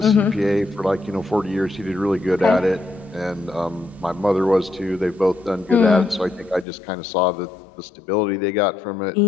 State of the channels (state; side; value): drops out; right; at 6.7 s